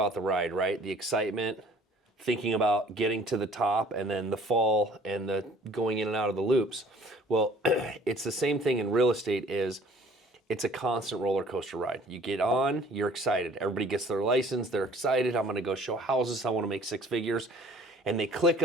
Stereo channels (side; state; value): both; normal; correlation 0.53